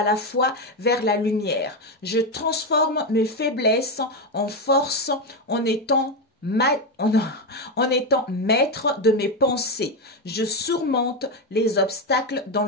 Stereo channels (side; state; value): both; normal; correlation 0.09